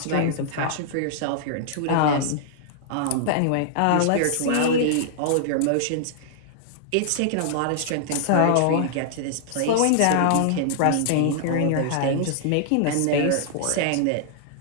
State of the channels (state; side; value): different; both; correlation -0.01